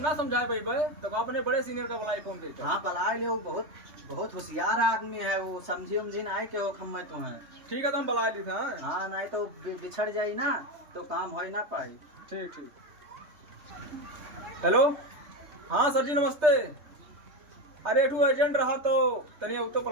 समझाए भाई तो आपने बड़े सीनियर का बुलाई फोन देते। हाँ बला लियो, बहुत बहुत होशियार आदमी है वो, समझी उमझी ना आए के हो खम्मे तो है। ठीक है तो हम बुला ली था। हाँ नहीं तो बिछड़ जाई ना तो काम हो ना पाई। ठीक ठीक। हेलो हाँ सर जी नमस्ते। अरे एठू एजेंट रहा तो तनिया तो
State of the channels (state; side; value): late; left; 3.2 ms